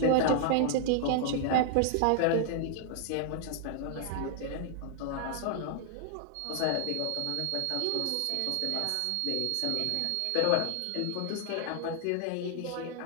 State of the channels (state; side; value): different; both; correlation -0.01